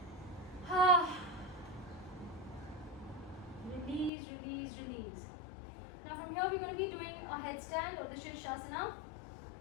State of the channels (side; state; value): right; drops out; at 4.1 s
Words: your knees. Now from here we're going to be doing a headstand or the Shirshasana.